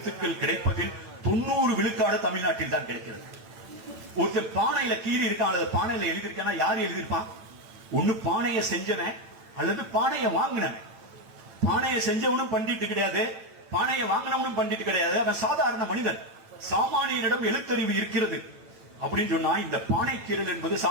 கிடைப்பதில் 90 விழுக்காடு தமிழ்நாட்டில் தான் கிடைக்கிறது. ஒருத்தர் பானையில கீறி இருக்கான் அல்லது பானையில எழுதியிருக்கானா யாரு எழுதியிருப்பான்? ஒண்ணு பானையை செஞ்சவன் அல்லது பானையை வாங்கினவன். பானையை செஞ்சவனும் பண்டிட்டு கிடையாது, பானையை வாங்கினவனும் பண்டிட்டு கிடையாது, அவன் சாதாரண மனிதன். சாமானியரிடம் எழுத்தறிவு இருக்கிறது அப்படின்னு சொன்னா இந்த பானை கீறல் என்பது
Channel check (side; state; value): left; late; 9.0 ms